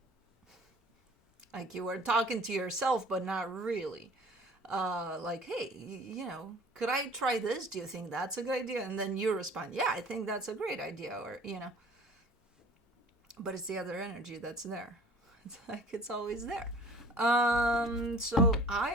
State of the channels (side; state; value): both; normal; correlation 0.47